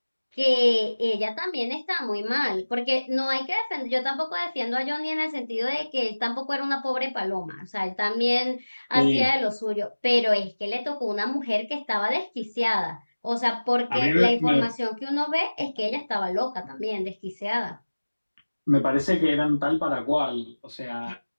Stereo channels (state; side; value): inverted; both; correlation -1.00